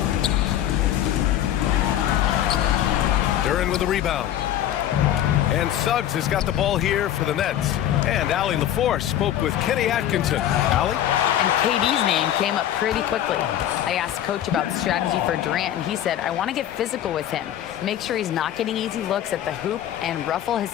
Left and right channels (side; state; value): right; quieter; 11.6 dB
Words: Duran with the rebound. And Suggs has got the ball here for the Nets. And Allie LaForce spoke with Kenny Atkinson. Allie? And KD's name came up pretty quickly. I asked Coach about the strategy for Durant, and he said, I want to get physical with him, make sure he's not getting easy looks at the hoop, and ruffle his